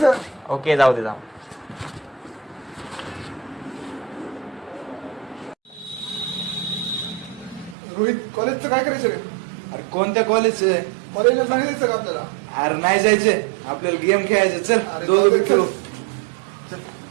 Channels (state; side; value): drops out; left; at 7.8 s